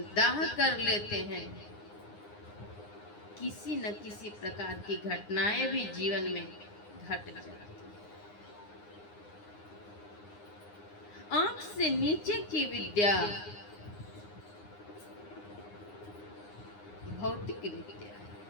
कर लेते हैं। किसी न किसी प्रकार की घटनाएं भी जीवन में घट जाती हैं। आंख से नीचे की विद्या भौतिक विद्या है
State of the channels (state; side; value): late; right; 9.7 ms